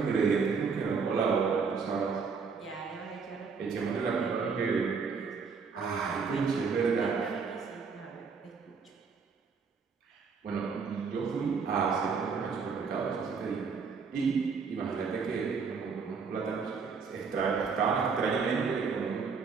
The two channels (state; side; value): quieter; left; 5.4 dB